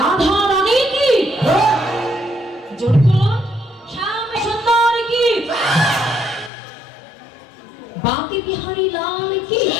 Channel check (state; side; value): drops out; right; at 6.5 s